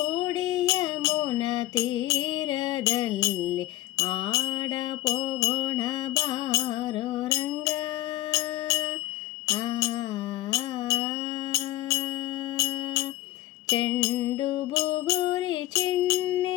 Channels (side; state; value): right; quieter; 15.5 dB